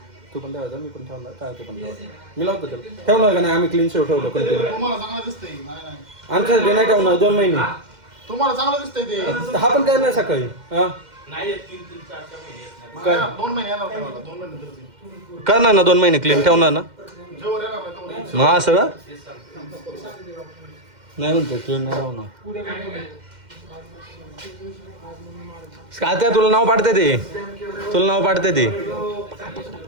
तू पण ठेवायचा मी पण ठेवणार काय ते पण ठेवायचं मी लावतो त्याला ठेवणार का नाही आम्ही क्लीन शेव ठेवलं कंटिन्यू तुम्हाला चांगलं दिसतंय नाही आमच्यासाठी नाही ठेवणार 2 महिने तुम्हाला चांगलं दिसतंय ते हा पण काय नाही सकाळी हा काय 2 महिने येणार तुम्हाला 2 महिने नंतर करणार ना 2 महिने क्लीन ठेवणार ना जेव्हा येणार नाही तेव्हा मग असं का नाही म्हणतो क्लीन नाही ठेवणार काय तुला नाव पाडते ते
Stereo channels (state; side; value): late; left; 2.1 ms